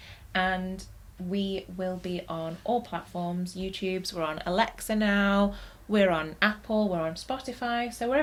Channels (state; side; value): identical; both; correlation 1.00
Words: And we will be on all platforms. YouTube's, we're on Alexa now. We're on Apple, we're on Spotify. So